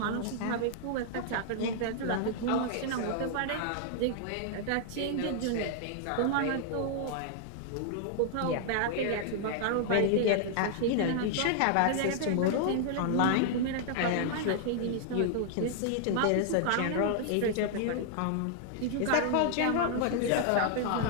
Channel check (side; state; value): both; different; correlation -0.01